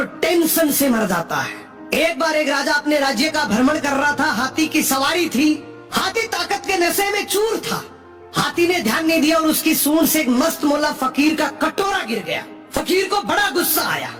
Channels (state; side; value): identical; both; correlation 1.00